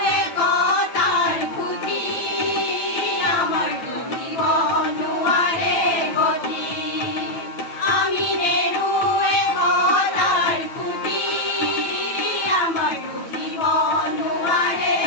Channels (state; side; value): late; right; 9.0 ms